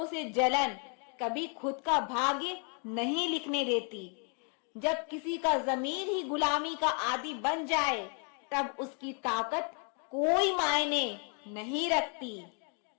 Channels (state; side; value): quieter; right; 39.6 dB